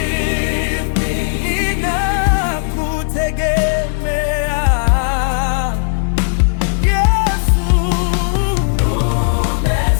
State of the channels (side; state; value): right; silent; 58 dB below the other